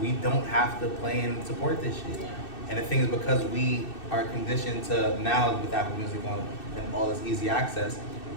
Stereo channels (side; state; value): right; late; 2.6 ms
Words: don't have to play and support this shit. Yeah. And the thing is, because we are conditioned to now with Apple Music on and all this easy access,